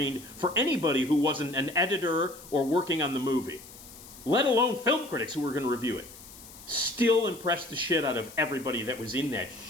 for anybody who wasn't an editor or working on the movie, let alone film critics who were going to review it, still impressed the shit out of everybody that was in that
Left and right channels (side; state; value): left; noise; hiss, 18 dB below the sound